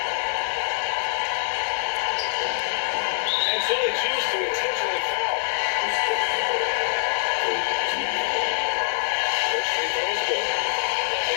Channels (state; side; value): silent; right; digital silence